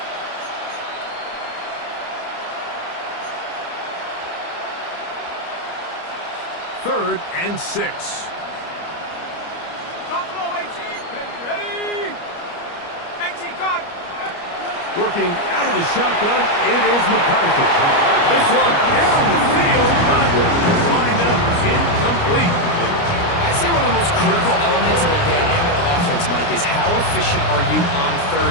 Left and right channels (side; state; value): right; late; 29 ms